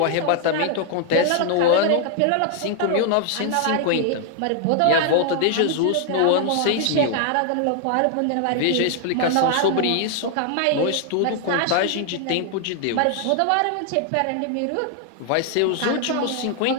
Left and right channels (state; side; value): different; both; correlation 0.00